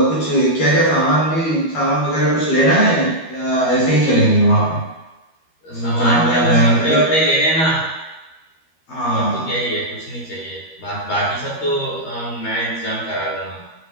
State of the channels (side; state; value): right; late; 12 ms